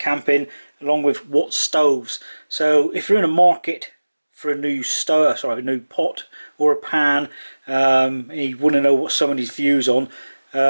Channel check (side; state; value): both; inverted; correlation -1.00